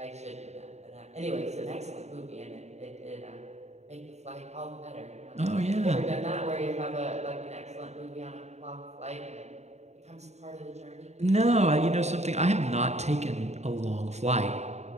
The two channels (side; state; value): left; late; 0.32 ms